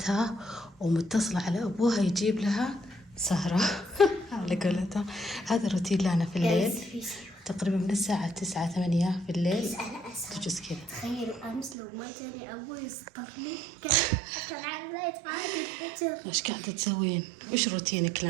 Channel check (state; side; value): drops out; left; at 11.8 s